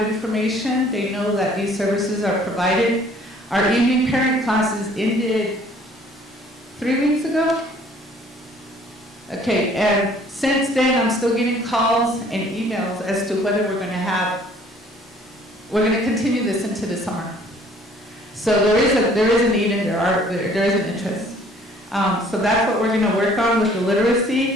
information. They know that these services are provided. Our evening parent classes ended 3 weeks ago. Okay, and since then, I'm still getting calls and emails as to whether we're going to continue this into the summer. So there is a need and there is an interest. So that's what we're going to work on with the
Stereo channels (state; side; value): normal; both; correlation 0.57